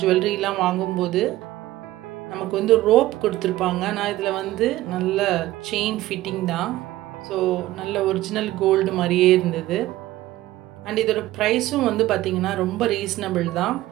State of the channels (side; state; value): left; quieter; 16.2 dB